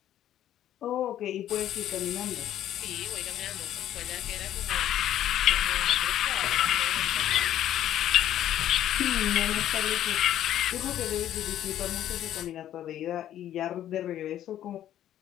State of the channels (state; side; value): quieter; right; 11.7 dB